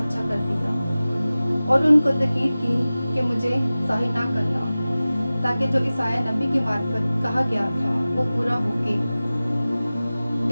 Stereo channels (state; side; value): inverted; both; correlation -0.97